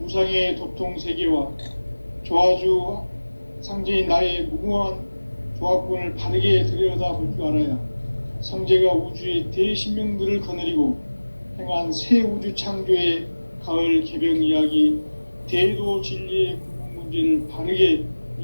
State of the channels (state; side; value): inverted; both; correlation -1.00